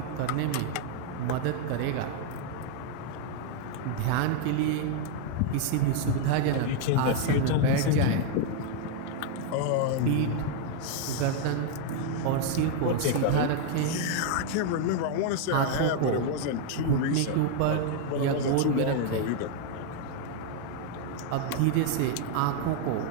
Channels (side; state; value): both; different; correlation 0.00